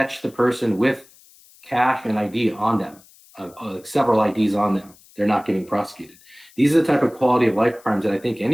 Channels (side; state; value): left; noise; hiss, 27 dB below the sound